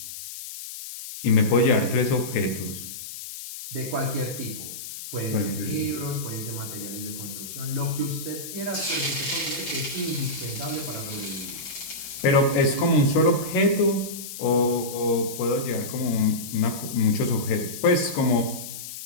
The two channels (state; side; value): noise; left; hiss, 10 dB below the sound